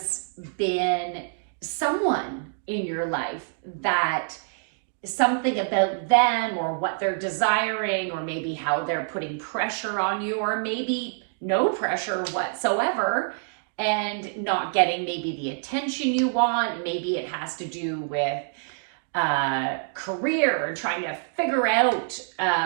been someone in your life that something about them or what they're desiring, or maybe how they're putting pressure on you, or maybe no pressure whatsoever and not getting maybe the attention you want. Maybe it has to do with career and trying to figure out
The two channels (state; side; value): silent; left; digital silence